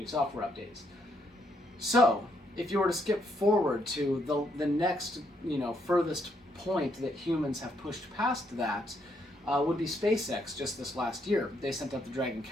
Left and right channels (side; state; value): both; normal; correlation 0.74